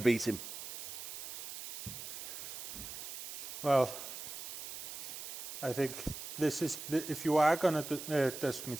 beat him? Well, I think this is, if you are going to dust me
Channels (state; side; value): noise; right; hiss, 8 dB below the sound